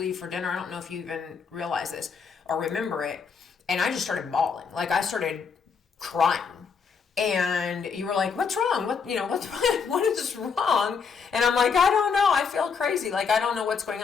for dinner. I don't know if you even realize this or remember it. And I just started bawling. Like I started crying. And you were like, what's wrong? What is wrong? And I'm like, I don't know. I feel crazy. Like, I don't know what's going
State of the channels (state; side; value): quieter; right; 5.9 dB